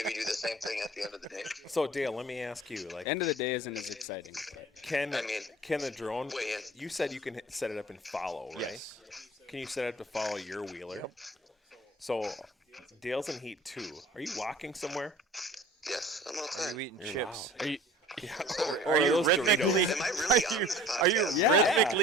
do the same thing at the end of the day. Dale, let me ask you, like, End of the day isn't as exciting. can I mean, the drone? weigh in. You said you can set it up and follow, right? Yes. Can you set it up to follow your wheeler? So Dale's in heat 2. Are you walking somewhere? Yes, I'm Are outside. you eating chips? Are you, Or Are you those rhythmically? Am I really on this Are you podcast?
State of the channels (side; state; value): both; normal; correlation 0.45